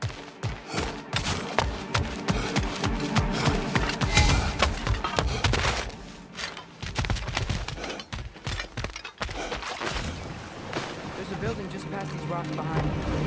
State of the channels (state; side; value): identical; both; correlation 1.00